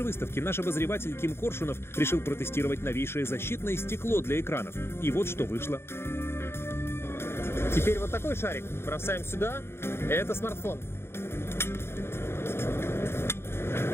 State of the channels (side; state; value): right; late; 0.12 ms